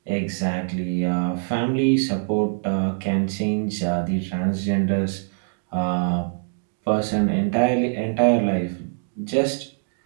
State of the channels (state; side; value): silent; left; digital silence